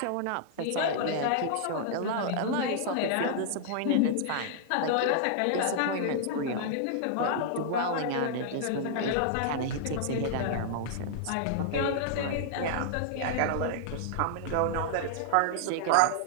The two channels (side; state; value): both; different; correlation -0.01